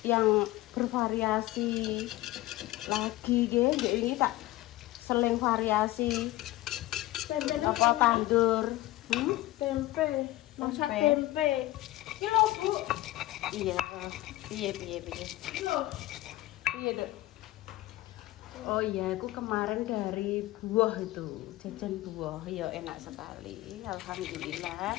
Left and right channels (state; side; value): quieter; right; 17.1 dB